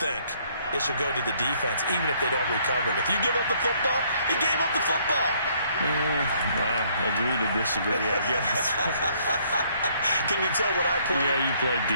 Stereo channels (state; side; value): inverted; both; correlation -0.65